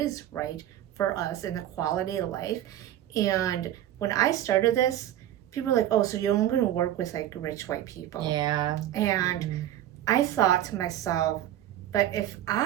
right for us in the quality of life. And when I started this, people were like, oh, so you're only going to work with like rich white people. Yeah. And I thought to myself, but if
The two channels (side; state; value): left; quieter; 12.3 dB